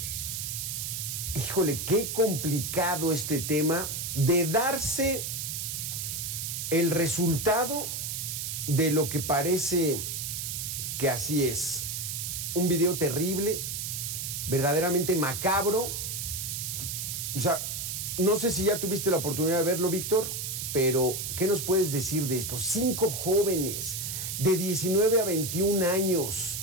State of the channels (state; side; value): noise; right; hiss, 4 dB below the sound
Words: híjole, qué complicado este tema de darse el resultado de lo que parece que así es. Un video terrible, verdaderamente macabro. O sea, no sé si ya tuviste la oportunidad de verlo, Víctor, pero ¿qué nos puedes decir de esto? 5 jóvenes de 19 a 21 años,